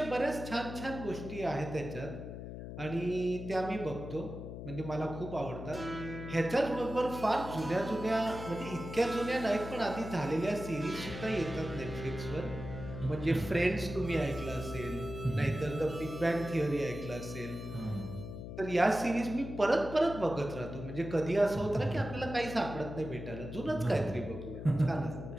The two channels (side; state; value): left; noise; hum, 9 dB below the sound